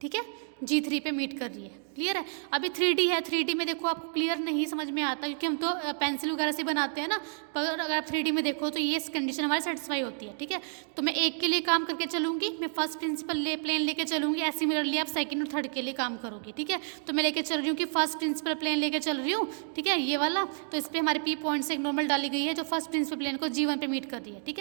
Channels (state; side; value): silent; left; 58 dB below the other